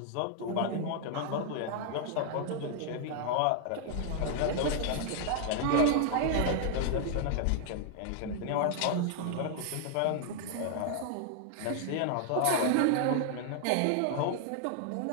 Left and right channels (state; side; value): different; both; correlation 0.00